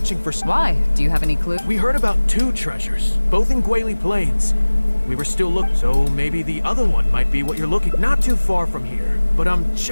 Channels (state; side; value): inverted; both; correlation -1.00